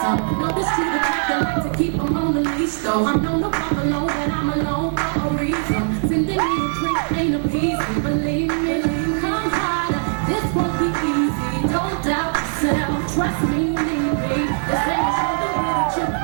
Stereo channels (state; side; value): silent; left; digital silence